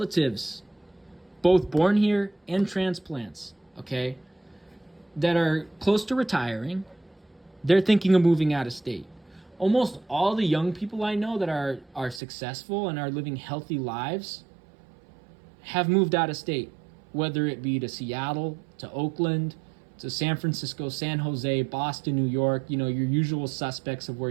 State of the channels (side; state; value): left; drops out; at 12.2 s